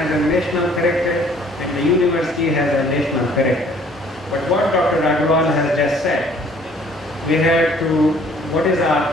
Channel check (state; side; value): normal; both; correlation 0.57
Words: a national character and the university has a national character. But what Dr. Agarwal has just said, we have to, what is our